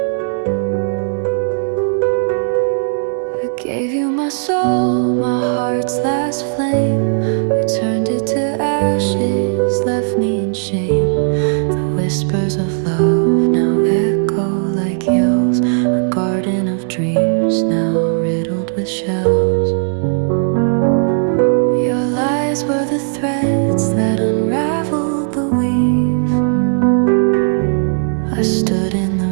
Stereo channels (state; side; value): silent; left; 69 dB below the other